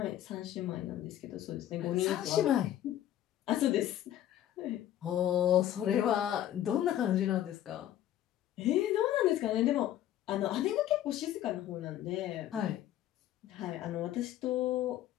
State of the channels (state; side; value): quieter; right; 12.1 dB